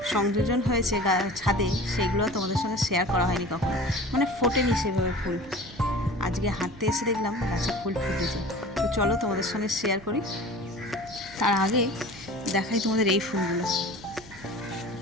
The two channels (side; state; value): right; noise; hum, 21 dB below the sound